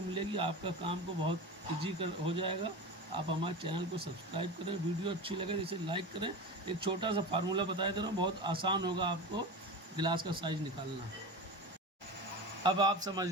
मिलेगी। आपका काम को बहुत ईजी हो जाएगा। आप हमारे चैनल को सब्सक्राइब करें, वीडियो अच्छी लगे तो इसे लाइक करें। एक छोटा सा फार्मूला बताया दे रहा हूँ, बहुत आसान होगा आपको गिलास का साइज निकालना। अब आप समझ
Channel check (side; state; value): both; normal; correlation 0.27